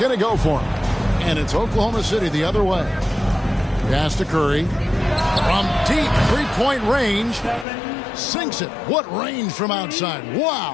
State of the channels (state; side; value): drops out; right; at 7.7 s